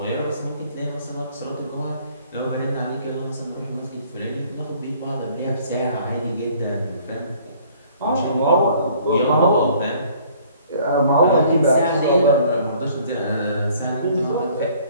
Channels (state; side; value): inverted; both; correlation -0.57